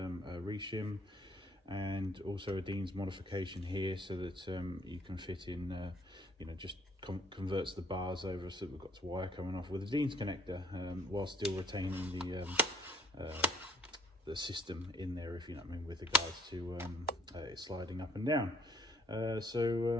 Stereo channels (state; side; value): normal; both; correlation 0.61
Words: reshim, and also a Dean's modification here so that you can fit in, just converts the bars over, so we've got this wire coming off with a Dean's connector, while still retaining the system in there, if you know what I mean, with regards to it sliding up and down. On